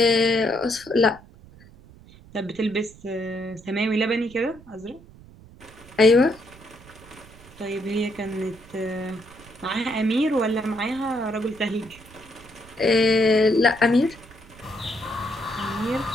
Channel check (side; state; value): right; noise; rumble, 22 dB below the sound